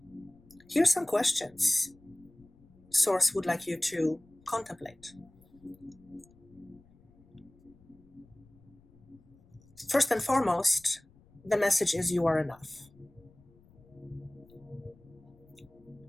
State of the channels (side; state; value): left; noise; rumble, 28 dB below the sound